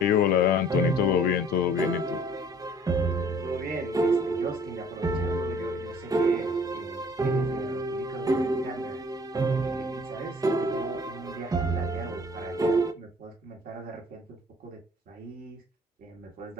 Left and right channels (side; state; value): both; normal; correlation 0.54